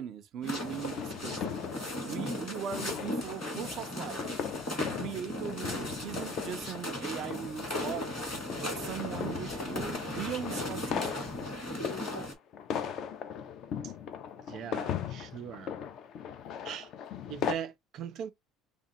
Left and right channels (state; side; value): normal; both; correlation 0.45